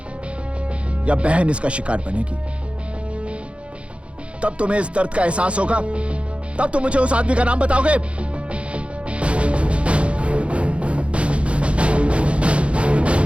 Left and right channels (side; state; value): left; late; 0.060 ms